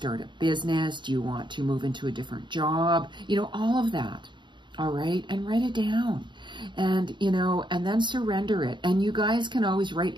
a business? Do you want to move into a different job? All of that. All right? And write it down. And, and then surrender it. And you guys can always write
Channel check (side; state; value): left; late; 0.23 ms